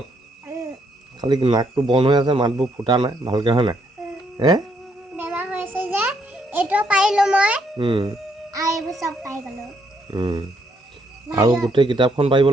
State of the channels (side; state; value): both; normal; correlation 0.73